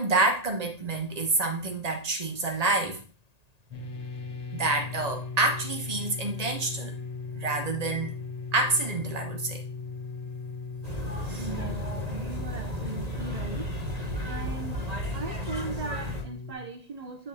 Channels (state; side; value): late; left; 1.8 ms